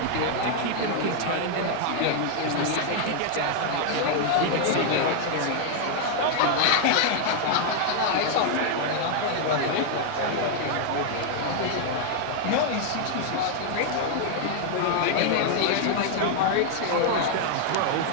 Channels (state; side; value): different; both; correlation 0.00